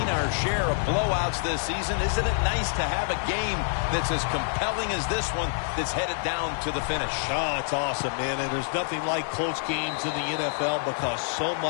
our share of blowouts this season. Isn't it nice to have a game that's as compelling as this one that's headed down to the finish? Oh, it's awesome, man. And there's nothing like close games in the NFL because so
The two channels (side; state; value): right; silent; 60 dB below the other